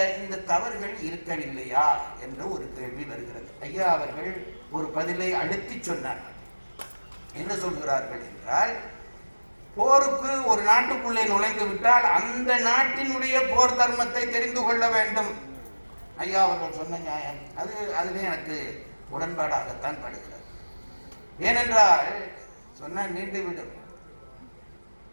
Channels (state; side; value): inverted; both; correlation -1.00